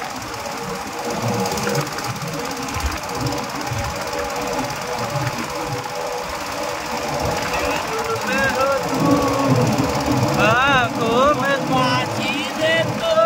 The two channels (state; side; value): identical; both; correlation 1.00